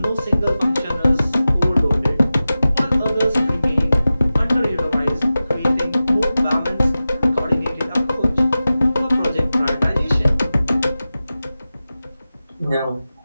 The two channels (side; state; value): both; inverted; correlation -0.95